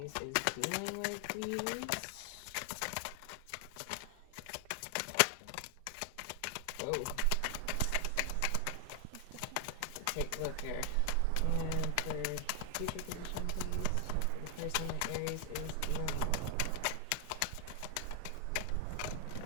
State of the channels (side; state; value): both; different; correlation 0.00